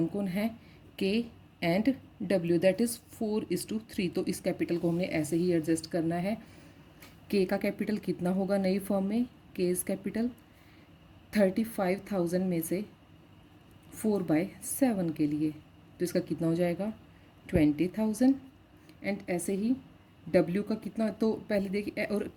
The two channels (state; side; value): identical; both; correlation 1.00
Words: कौन है, के एंड डब्ल्यू, दैट इज़ 4:3। तो इस कैपिटल को हमने ऐसे ही एडजस्ट करना है। के का कैपिटल कितना होगा नई फर्म में, के इज कैपिटल 35,000 में से 4/7 के लिए, तो इसका कितना हो जाएगा 20,000। एंड ऐसे ही डब्ल्यू का कितना, तो पहले देखिए, और